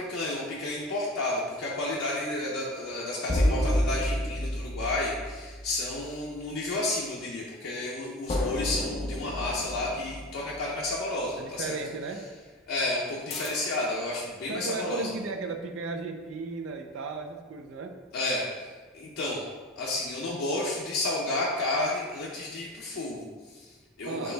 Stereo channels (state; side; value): normal; both; correlation 0.31